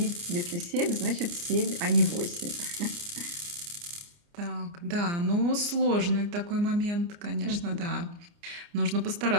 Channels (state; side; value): late; left; 29 ms